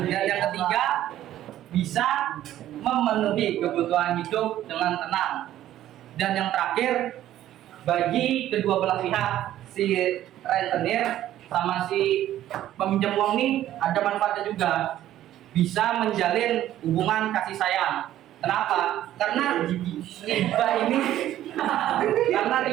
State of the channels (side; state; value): left; quieter; 12.8 dB